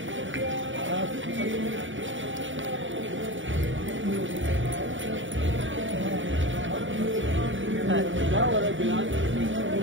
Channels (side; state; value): left; late; 0.56 ms